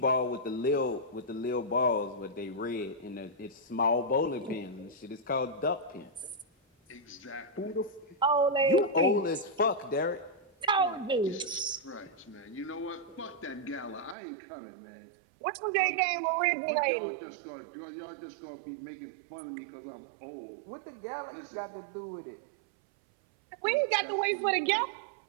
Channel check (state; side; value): drops out; left; at 14.2 s